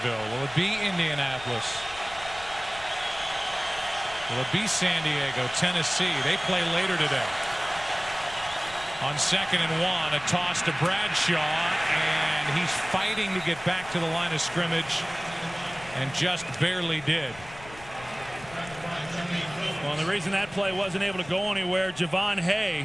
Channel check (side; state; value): left; noise; rumble, 19 dB below the sound